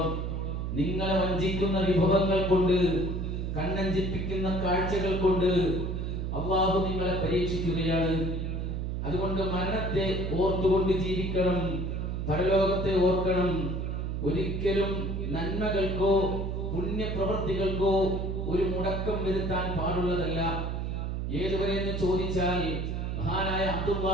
നിങ്ങളെ വഞ്ചിക്കുന്ന വിഭവങ്ങൾ കൊണ്ട്, കണ്ണഞ്ചിപ്പിക്കുന്ന കാഴ്ചകൾ കൊണ്ട് അല്ലാഹു നിങ്ങളെ പരീക്ഷിക്കുകയാണ്. അതുകൊണ്ട് മരണത്തെ ഓർത്തുകൊണ്ട് ജീവിക്കണം, പരലോകത്തെ ഓർക്കണം. ഒരിക്കലും നന്മകൾക്കോ പുണ്യപ്രവൃത്തികൾക്കോ ഒരു മുടക്കം വരുത്താൻ പാടുള്ളതല്ല. ഏതുവരെ എന്ന് ചോദിച്ചാൽ മഹാനായ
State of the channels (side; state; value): right; noise; hum, 2 dB below the sound